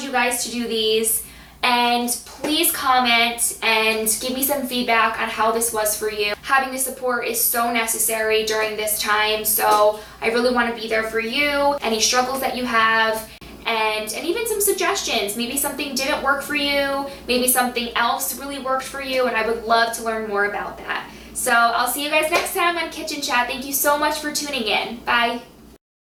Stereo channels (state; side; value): identical; both; correlation 1.00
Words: you guys to do these, and please comment and give me some feedback on how this was for you. Having the support is so necessary during this time, so I really want to be there for you, any struggles that you have, and even some suggestions. Maybe something didn't work for you, maybe something else really worked for you, and I would love to learn more about that. So I'll see you guys next time on Kitchen Chat. Thank you so much for tuning in. Bye.